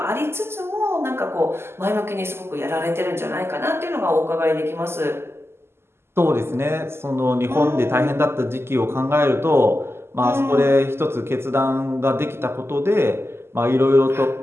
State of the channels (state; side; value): late; left; 0.12 ms